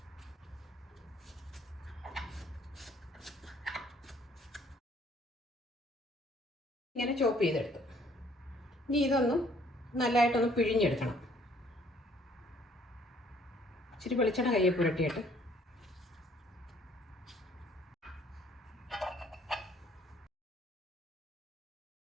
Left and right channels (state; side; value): normal; both; correlation 0.61